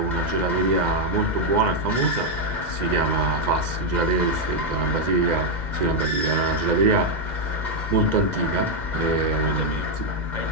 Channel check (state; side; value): late; left; 2.0 ms